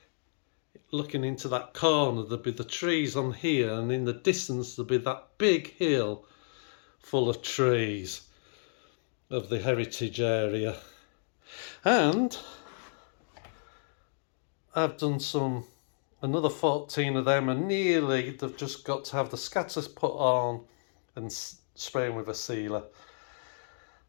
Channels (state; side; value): silent; right; digital silence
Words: looking into that corner, there'll be the trees on here, and in the distance there'll be that big hill full of trees of the heritage area. And I've done another 14 of them, and nearly they've just got to have the scatters put on and spraying with a sealer.